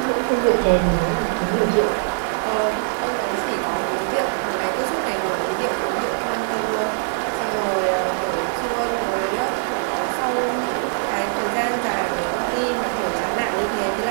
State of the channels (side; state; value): left; silent; 64 dB below the other